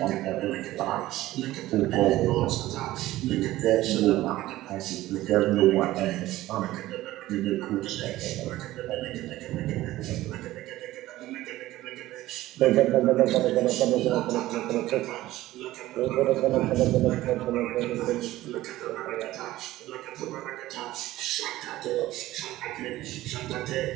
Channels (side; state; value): left; quieter; 16.1 dB